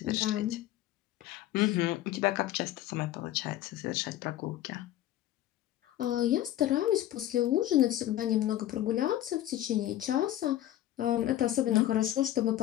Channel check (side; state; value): right; quieter; 13.5 dB